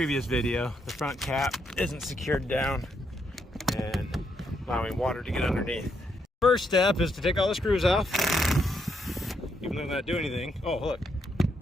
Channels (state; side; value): normal; both; correlation 0.77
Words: video, the front cap isn't secured down and allowing water to get underneath. First step is to take all the screws off, even though they're not doing anything. Oh, look,